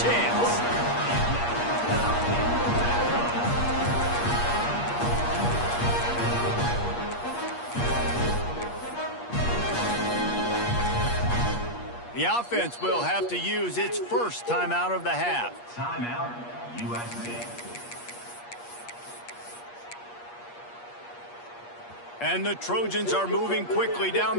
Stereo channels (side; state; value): right; late; 8.4 ms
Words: The offense will have to use its first timeout of the half. Timeout, USC. And the Trojans are moving quickly down